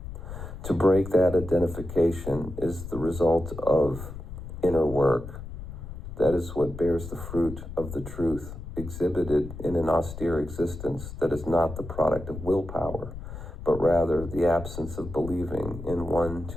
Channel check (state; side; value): noise; left; rumble, 10 dB below the sound